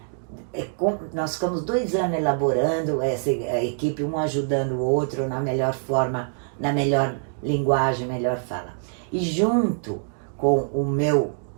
Nós ficamos 2 anos elaborando a equipe, um ajudando o outro na melhor forma, na melhor linguagem, melhor fala. E junto com o meu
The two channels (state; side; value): silent; left; digital silence